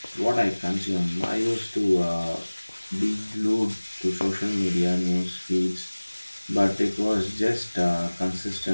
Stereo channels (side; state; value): both; inverted; correlation -1.00